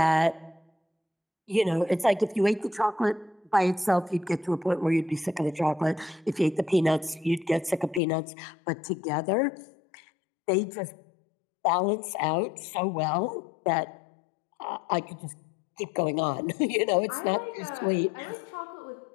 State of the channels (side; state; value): right; drops out; at 8.0 s